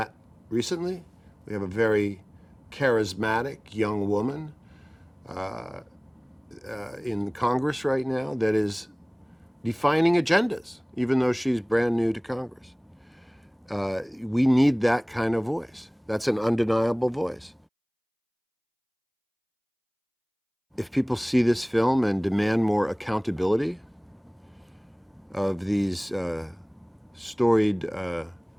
recently. We have a very charismatic young woman in Congress right now that is defining agendas, even though she's brand new to Congress. We need that kind of voice. That's an undeniable voice. If people see this film and demand more accountability of these storied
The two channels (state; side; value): identical; both; correlation 1.00